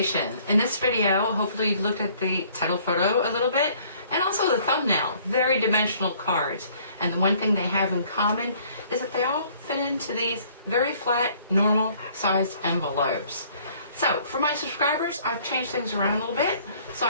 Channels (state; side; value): inverted; both; correlation -0.59